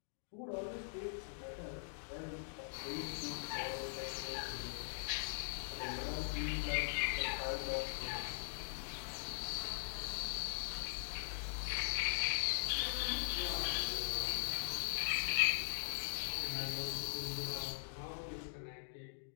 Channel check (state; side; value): silent; right; digital silence